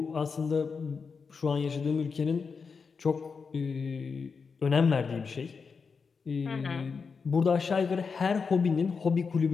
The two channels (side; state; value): right; quieter; 5.3 dB